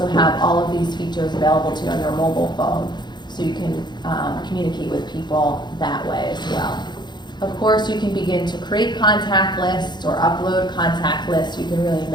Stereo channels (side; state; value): right; late; 0.21 ms